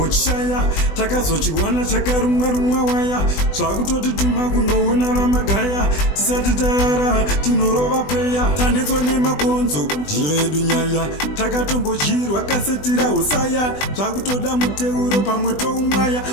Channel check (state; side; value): late; right; 20 ms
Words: takazochiwana chakarumwa waya zvakutoti tuma kunoona vamagaya tisati tayara tinorova preya tanetswa nemakonzo ndiyedu nyaya takatombochirwa kasetira usaya zvakutoda muteuro pamwe toumwaya